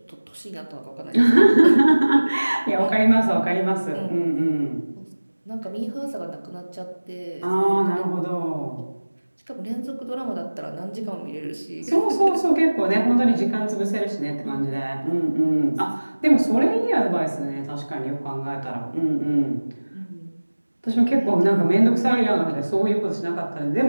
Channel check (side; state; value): both; inverted; correlation -1.00